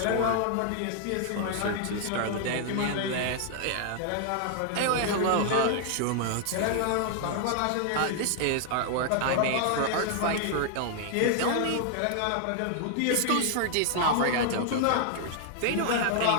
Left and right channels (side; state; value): both; different; correlation 0.00